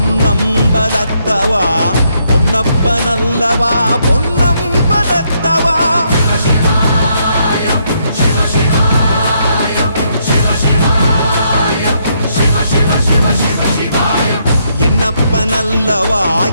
பொன்னப்பனல்லவா பொன்னம்பலத்தவா. என்னப்பனல்லவா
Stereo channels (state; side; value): inverted; both; correlation -0.74